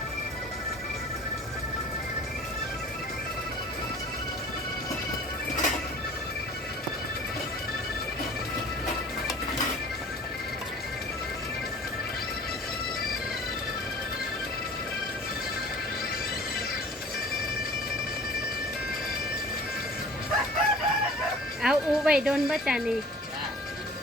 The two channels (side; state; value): both; normal; correlation 0.46